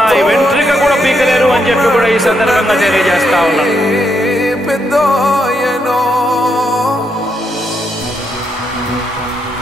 వెంట్రుక కూడా పీకలేరు అని చెప్పి కూడా ఈ సందర్భంగా తెలియజేస్తా ఉన్నాను.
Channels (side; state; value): both; normal; correlation 0.79